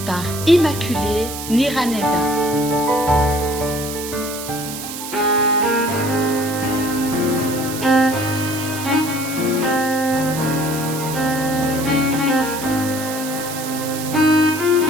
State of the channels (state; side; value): noise; right; hiss, 9 dB below the sound